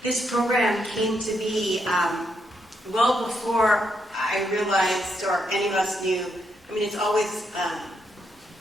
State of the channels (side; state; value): both; normal; correlation 0.79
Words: this program came to be well before I realized, or any of us knew. I mean, it's always